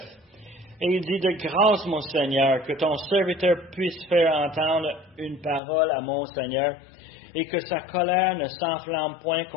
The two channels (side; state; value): right; drops out; at 5.6 s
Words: Et il dit, de grâce, mon Seigneur, que ton serviteur puisse faire entendre une parole à mon Seigneur, et que sa colère ne s'enflamme point